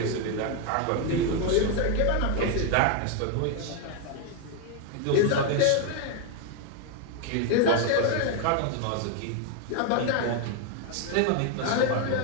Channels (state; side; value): different; both; correlation 0.01